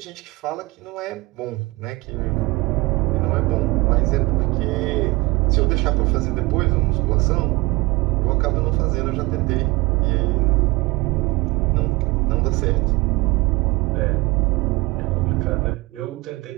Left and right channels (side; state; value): left; quieter; 23.0 dB